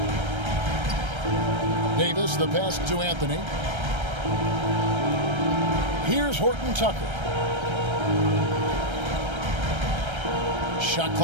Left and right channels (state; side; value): late; left; 1.3 ms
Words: Davis, the pass to Anthony. Here's Horton Tucker. Shot